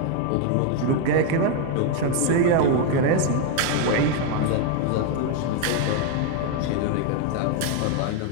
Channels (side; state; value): both; different; correlation 0.01